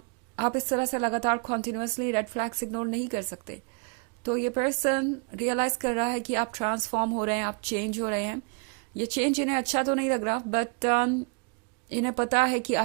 इस तरह से लगातार कॉन्टिन्यूसली रेड फ्लैग्स इग्नोर नहीं कर सकते। तो ये पर्सन रियलाइज कर रहा है कि आप ट्रांसफॉर्म हो रहे हैं, आप चेंज हो रहे हैं। ये चेंज इन्हें अच्छा तो नहीं लग रहा, बट इन्हें पता है कि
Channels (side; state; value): left; quieter; 33.9 dB